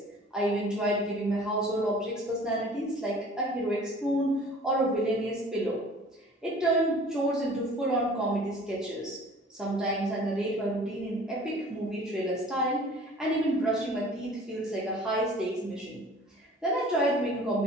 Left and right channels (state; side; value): normal; both; correlation 0.48